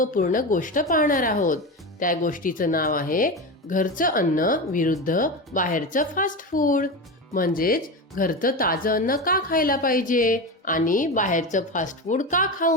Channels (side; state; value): both; normal; correlation 0.21